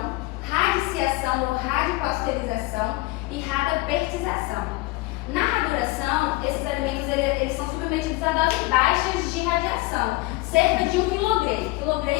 radiciação ou radiopasteurização e radapertização. Na raduração, esses alimentos eles são submetidos a doses baixas de radiação, cerca de 1 quilogray.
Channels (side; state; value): right; quieter; 21.1 dB